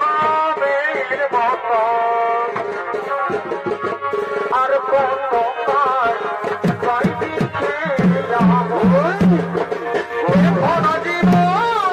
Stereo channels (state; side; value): identical; both; correlation 1.00